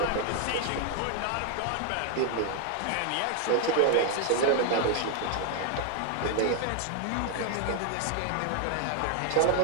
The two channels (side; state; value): both; different; correlation 0.00